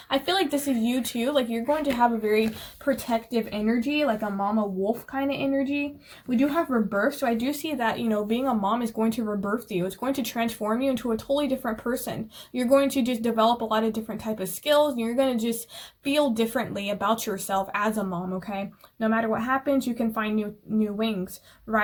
feel like this is you too. Like, you're going to have a very protective energy, like a mama wolf kind of energy. We do have rebirth, so I do see that, you know, being a mom is going to rebirth you. It's going to transform you into a totally different person. You're going to just develop a lot of different type of skills, and you're going to just feel differently about yourself as a mom, okay? No matter what happens, you can find new wings.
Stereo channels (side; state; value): both; identical; correlation 1.00